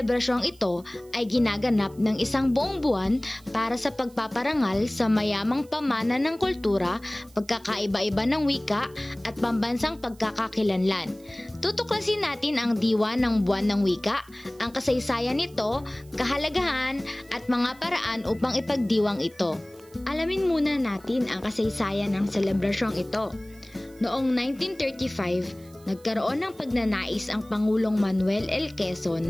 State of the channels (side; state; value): right; noise; hiss, 27 dB below the sound